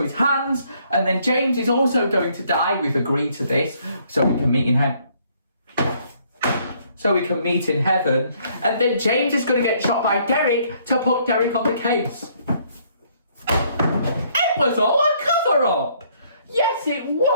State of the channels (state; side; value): inverted; both; correlation -0.66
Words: his hands. And then James is also going to die. We've agreed to this so we can meet in heaven. And then James is going to get shot by Derek to put Derek on the case. It was all a cover-up. Yes, it